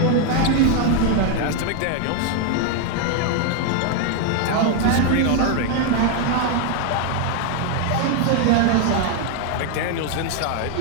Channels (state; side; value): different; both; correlation 0.00